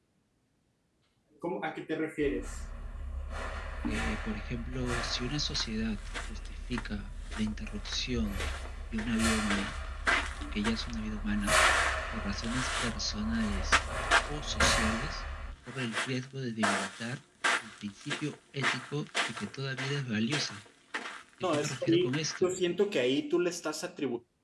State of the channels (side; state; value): both; identical; correlation 1.00